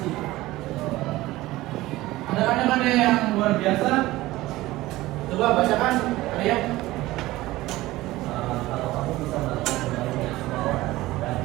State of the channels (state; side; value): quieter; left; 17.8 dB